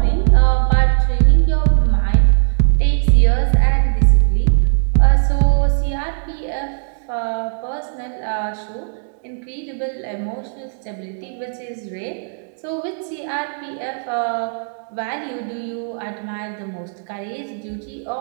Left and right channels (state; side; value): silent; left; digital silence